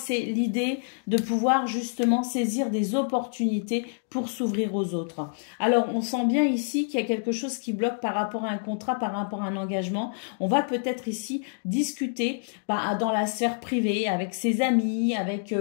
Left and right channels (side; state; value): right; silent; digital silence